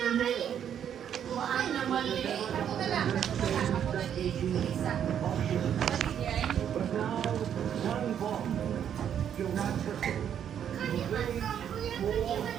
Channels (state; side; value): quieter; left; 9.1 dB